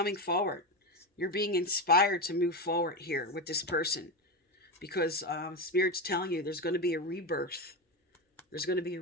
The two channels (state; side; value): normal; both; correlation 0.15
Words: forward. You're being inspired to move forward here with this person, because Spirit's telling you there's going to be a rebirth. There's going to be